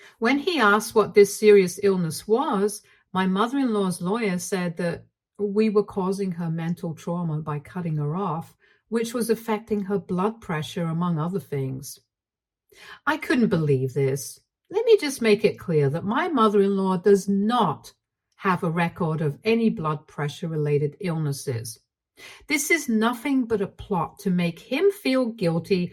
When he asked what this serious illness was, My mother-in-law's lawyer said that we were causing her mental trauma by cutting her off, which was affecting her blood pressure, among other things. I couldn't believe this. Let me just make it clear that my mother-in-law does not have a record of any blood pressure-related illnesses. This is nothing but a plot to make him feel guilty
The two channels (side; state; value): both; identical; correlation 1.00